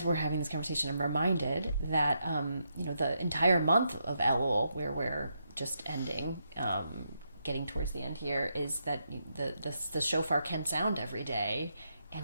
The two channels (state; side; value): inverted; both; correlation -0.81